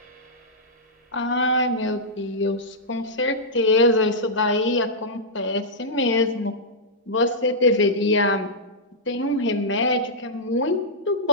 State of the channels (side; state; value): both; normal; correlation -0.10